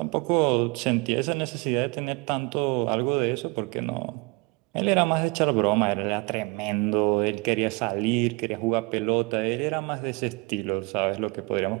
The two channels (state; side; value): quieter; left; 27.4 dB